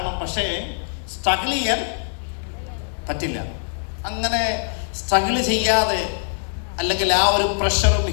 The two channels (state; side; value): silent; right; digital silence